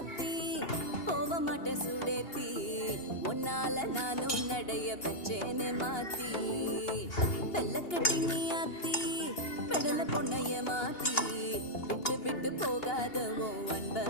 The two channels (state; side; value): late; right; 2.8 ms